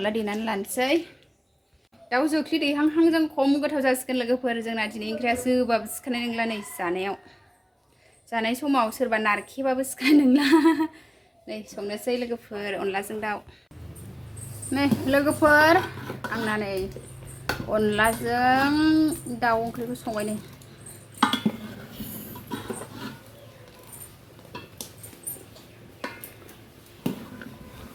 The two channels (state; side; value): identical; both; correlation 1.00